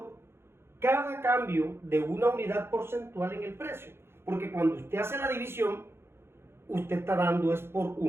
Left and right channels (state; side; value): late; left; 0.12 ms